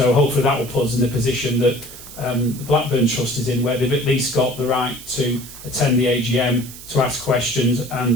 hopefully that will put us in the position that the Blackburn Trust is in, where they've at least got the right to attend the AGM, to ask questions,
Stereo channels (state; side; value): noise; right; hiss, 15 dB below the sound